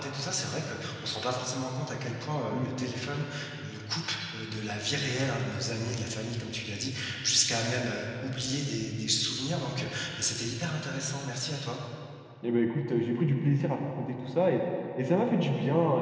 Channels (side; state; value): both; identical; correlation 1.00